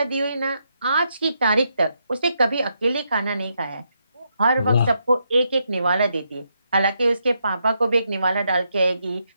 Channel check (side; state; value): both; inverted; correlation -0.80